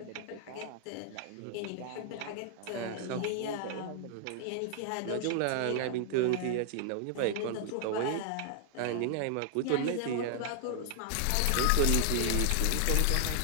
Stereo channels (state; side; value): different; both; correlation 0.00